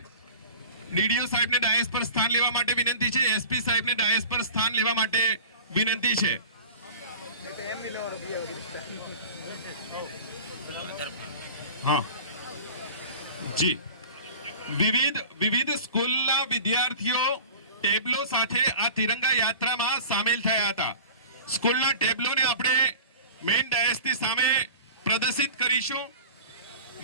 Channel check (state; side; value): inverted; both; correlation -0.39